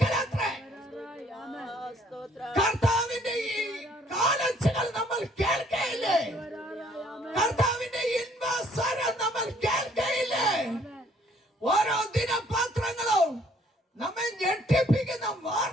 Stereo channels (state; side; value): normal; both; correlation 0.62